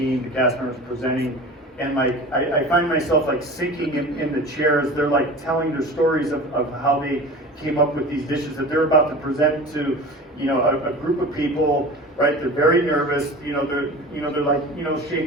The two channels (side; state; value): both; normal; correlation 0.36